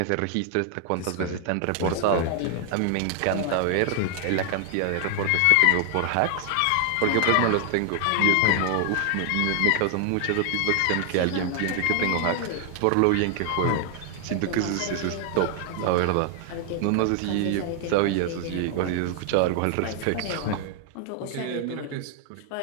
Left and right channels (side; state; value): both; different; correlation 0.00